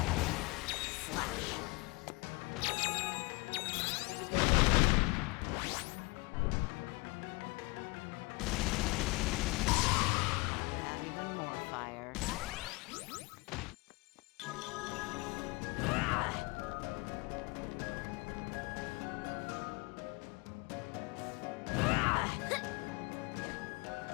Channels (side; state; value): right; quieter; 25.7 dB